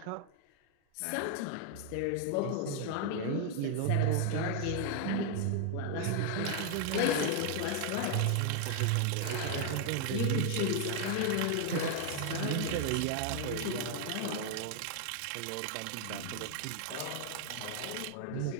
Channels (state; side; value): different; both; correlation 0.00